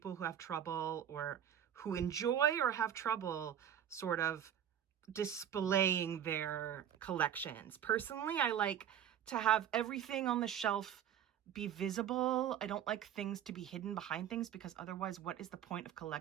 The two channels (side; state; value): left; quieter; 9.9 dB